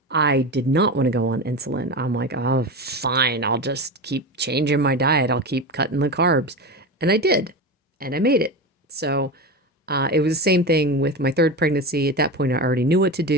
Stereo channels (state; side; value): normal; both; correlation 0.23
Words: I did not want to go on insulin. I'm like, oh, fine. I'll just keep changing my diet. I'll keep cutting the carbs. And I did. And I made it. So it was the same thing with my third pregnancy. At that point, I already knew what to